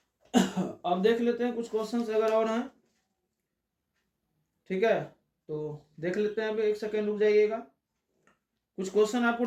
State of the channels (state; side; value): identical; both; correlation 1.00